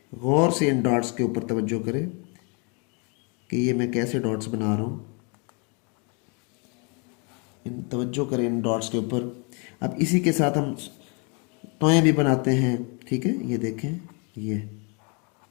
गौर से इन डॉट्स के ऊपर तवज्जो करें कि ये मैं कैसे डॉट्स बना रहा हूँ। इन तवज्जो करें इन डॉट्स के ऊपर। अब इसी के साथ हम टॉय भी बनाते हैं। ठीक है, ये देखें, ये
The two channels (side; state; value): right; quieter; 34.6 dB